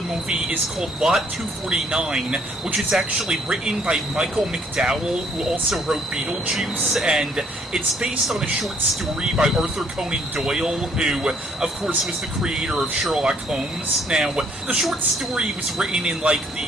movie is called Lot 249, which is actually written by Michael McDowell, who also wrote Beetlejuice, and it's based on a short story by Arthur Conan Doyle, who, of course, was the creator of Sherlock Holmes. Now, the short story was written in, the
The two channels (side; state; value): both; normal; correlation 0.64